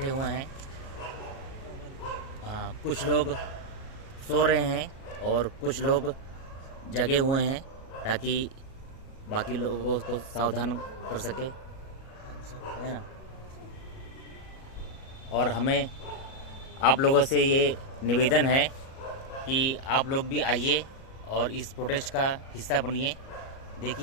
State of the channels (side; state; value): right; late; 37 ms